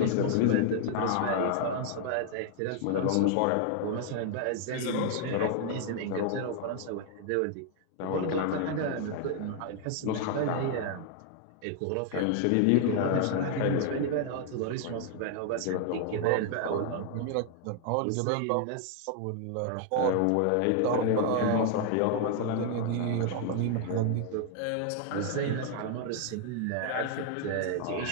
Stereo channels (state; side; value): different; both; correlation 0.00